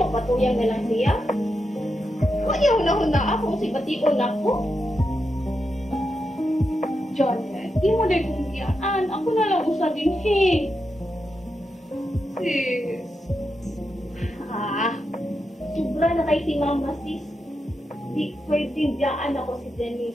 na lang siya. Kuya, huna-huna ako, si Bation ako. Janet, di mo dahil kong iyaan. Ako na lang usa din, he. Sis. Ah, sobra na kay si Mama, sis. Di pwedeng diyaan ako si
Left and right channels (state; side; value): normal; both; correlation 0.86